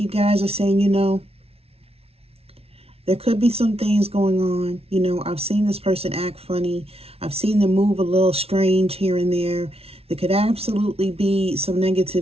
guys are saying, there could be some things going on. I've seen this person act funny. I've seen them move a little strange here and there. There could absolutely be some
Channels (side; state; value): left; late; 0.29 ms